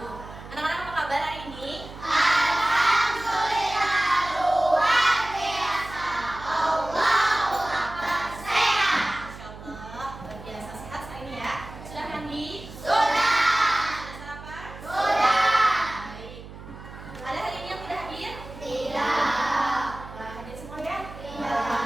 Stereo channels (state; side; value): noise; right; hum, 15 dB below the sound